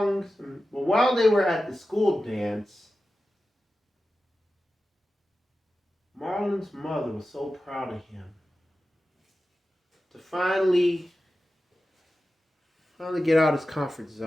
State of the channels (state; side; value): normal; both; correlation 0.93